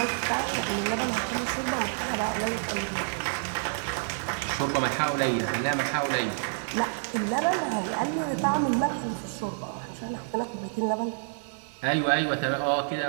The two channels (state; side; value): silent; left; digital silence